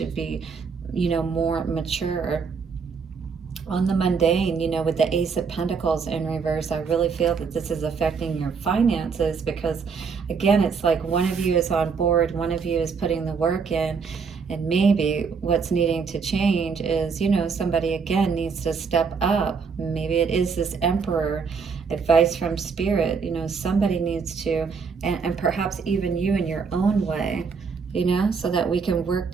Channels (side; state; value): left; quieter; 5.5 dB